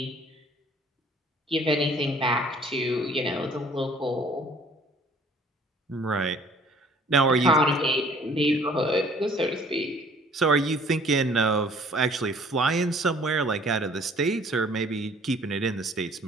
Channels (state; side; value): normal; both; correlation 0.55